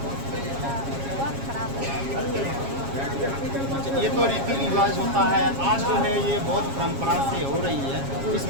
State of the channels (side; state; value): left; late; 7.3 ms